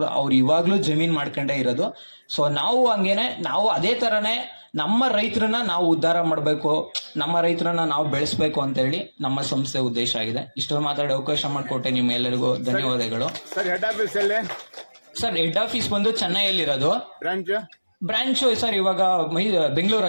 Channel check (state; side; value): inverted; both; correlation -1.00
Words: ಅವ್ರು ಇವಾಗ್ಲೂ ಜಮೀನ್ ಮಾಡ್ಕೊಂಡೇ ಇರೋದು. ಸೊ ನಾವು ಹಂಗೇನೆ, ನಾವು ಅದೇ ತರನೇ ನಮ್ಮ ರೈತರನ್ನ ನಾವು ಉದ್ಧಾರ ಮಾಡಬೇಕು, ನಮ್ಮ ರೈತರನ್ನ ನಾವು ಬೆಳೆಸ್ಬೇಕು ಅಂತ ಹೇಳಿ ನಮ್ಮ ಸಂಸ್ಥೆ ಉದ್ದೇಶ ಆಗಿದೆ. ಇಷ್ಟೊಂದು ಮಾತಾಡಿ ಅವಕಾಶ ಮಾಡಿಕೊಟ್ಟೆ ನಿಮ್ಮೆಲ್ಲರಿಗೂ ಧನ್ಯವಾದಗಳು. ಸರ್, ಹೆಡ್ ಆಫೀಸ್ ಎಲ್ಲಿ? ಸರ್, ಹೆಡ್ ಆಫೀಸ್ ಬಂದು ಚೆನ್ನೈಯಲ್ಲಿರೋದು. ಬ್ರಾಂಚ್ ಸರ್ ಇವಾಗ